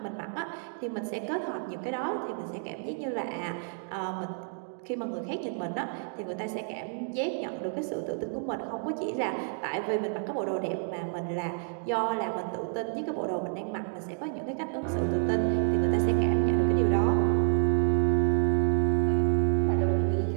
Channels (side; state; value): left; silent; 58 dB below the other